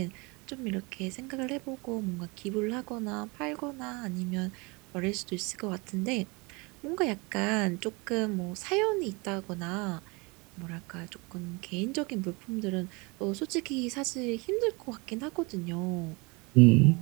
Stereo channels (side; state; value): left; quieter; 27.7 dB